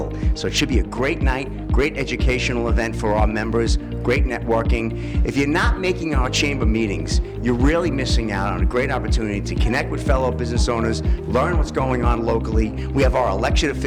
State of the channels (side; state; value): both; identical; correlation 1.00